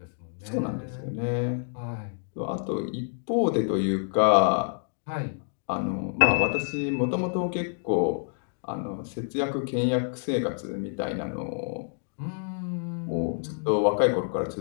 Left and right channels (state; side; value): silent; right; 59 dB below the other